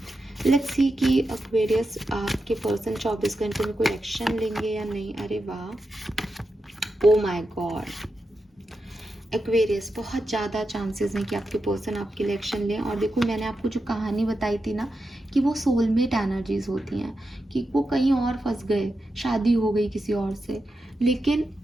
लेट्स सी कि एक्वेरियस आपके पर्सन 24 घंटे में कोई एक्शन लेंगे या नहीं। अरे वाह, ओ माय गॉड, एक्वेरियस बहुत ज़्यादा चांसेस हैं कि आपके पर्सन आपके लिए एक्शन लें। और देखो, मैंने आपको जो कहानी बताई थी ना कि वो सोलमेट एनर्जीज होती हैं, कि वो कहीं और फंस गए, शादी हो गई किसी और से, लेकिन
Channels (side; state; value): both; normal; correlation 0.88